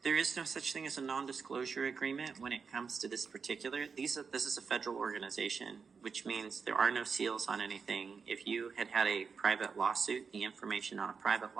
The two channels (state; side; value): quieter; left; 5.6 dB